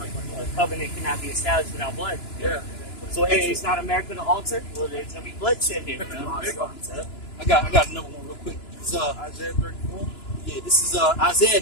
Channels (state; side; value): late; right; 2.9 ms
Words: a covenant cannot be established without blood. Yeah. So hey, it's not America to alter. Well, there's gonna be bloodshed here. I got another one real quick. It's, Isaiah 34. Yeah, this is Isaiah